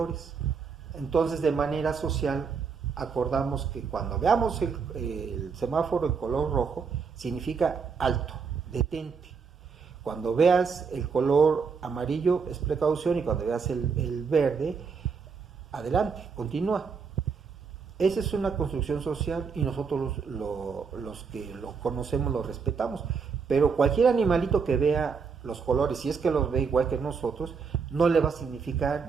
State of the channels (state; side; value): quieter; left; 5.6 dB